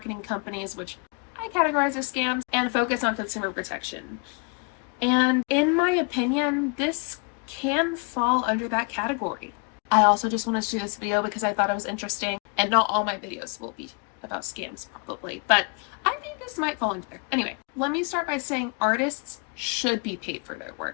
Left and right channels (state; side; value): quieter; right; 34.4 dB